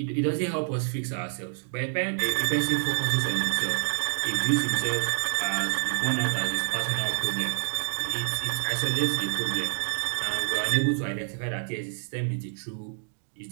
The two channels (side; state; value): left; silent; digital silence